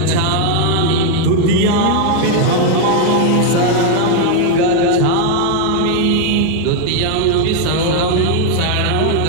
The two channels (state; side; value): different; both; correlation 0.01